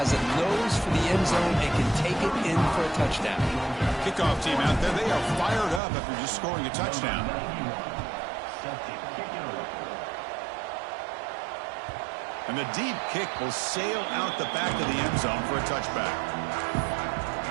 a nose for the end zone and can take it in for a touchdown. Kickoff team out there. They are fired up after just scoring a touchdown. And the deep kick will sail out the back of the end zone for a touchback.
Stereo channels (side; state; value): left; drops out; at 5.8 s